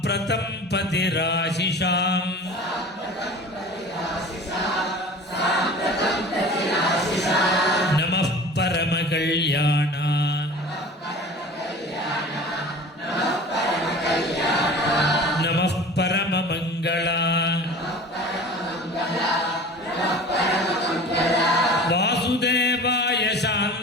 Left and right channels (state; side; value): normal; both; correlation 0.39